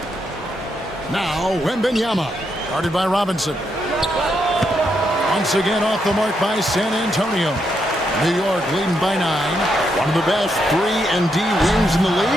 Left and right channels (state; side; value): normal; both; correlation 0.80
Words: Now Wembanyama. Guarded by Robinson. Once again off the mark by San Antonio. New York leading by 9. One of the best 3-and-D wings in the